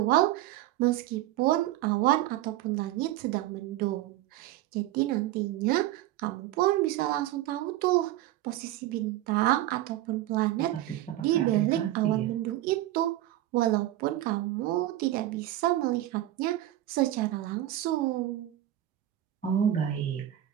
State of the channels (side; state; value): left; quieter; 14.2 dB